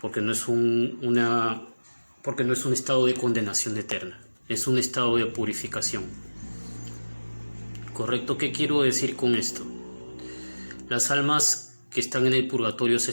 estado de condenación eterna, es un estado de purificación. ¿Correcto? ¿Qué quiero decir con esto? Las almas que están en el purgatorio se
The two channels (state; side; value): inverted; both; correlation -1.00